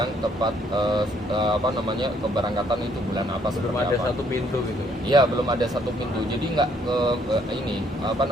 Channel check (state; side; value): normal; both; correlation 0.67